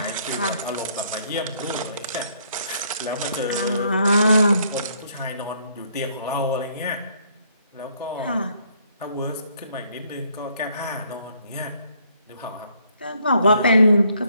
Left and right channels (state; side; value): inverted; both; correlation -0.68